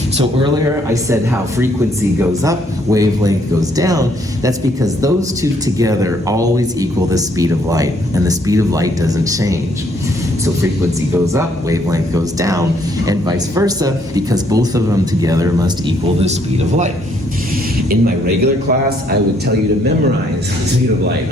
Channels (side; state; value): both; normal; correlation 0.68